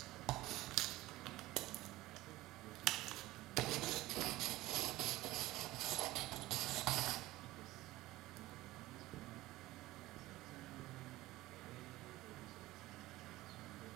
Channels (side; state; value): left; quieter; 17.7 dB